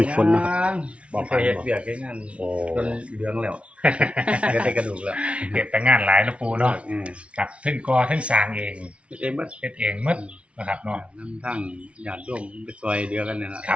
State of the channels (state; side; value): late; left; 0.061 ms